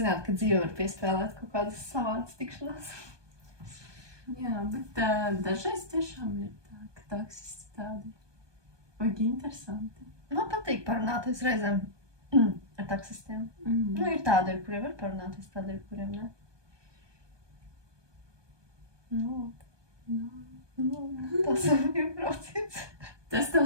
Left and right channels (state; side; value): late; left; 1.2 ms